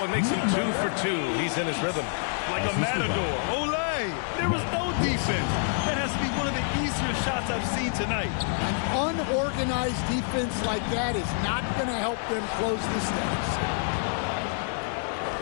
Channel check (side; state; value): right; silent; digital silence